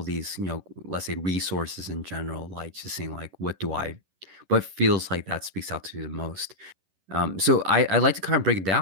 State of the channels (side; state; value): left; late; 11 ms